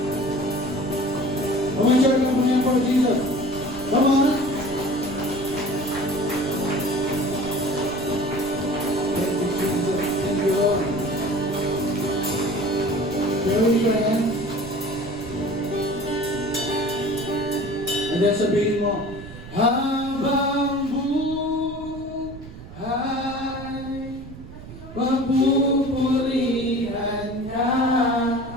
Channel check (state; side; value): noise; right; rumble, 15 dB below the sound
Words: Umansure lang po yan for Jesus. Come on. Thank you, Jesus. Thank you, Lord. Raise your hands. And then sabihin mo, habang buhay, papupurihan ka.